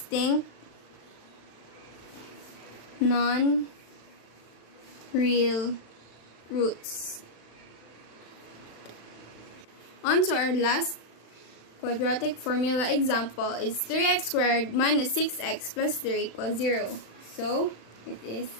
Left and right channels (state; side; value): late; right; 35 ms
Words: non-real roots. On to our last quadratic formula example is 3x squared minus 6x plus 3 equals 0. So it is